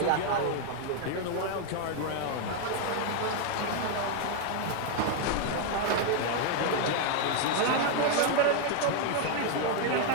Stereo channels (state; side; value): different; both; correlation 0.00